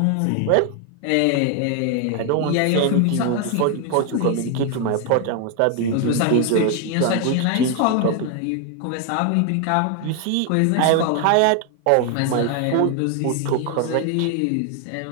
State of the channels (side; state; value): both; different; correlation 0.01